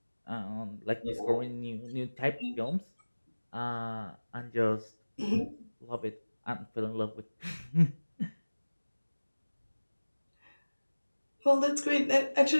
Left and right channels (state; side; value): inverted; both; correlation -1.00